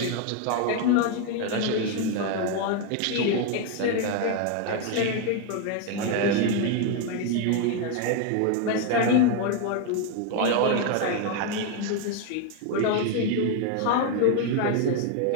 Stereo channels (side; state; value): both; different; correlation 0.01